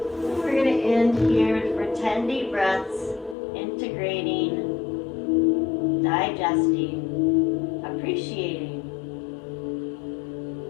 we're going to end here for 10 deep breaths, integrating, digesting, appreciating.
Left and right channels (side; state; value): right; drops out; at 3.4 s